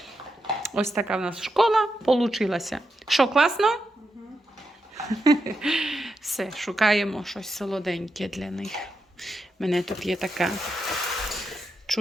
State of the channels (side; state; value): both; normal; correlation 0.85